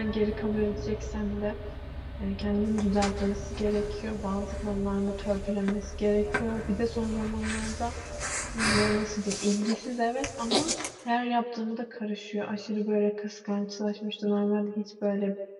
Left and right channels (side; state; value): both; identical; correlation 1.00